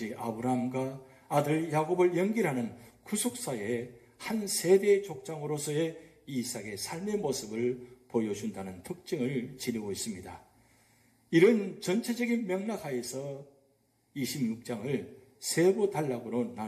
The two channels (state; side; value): identical; both; correlation 1.00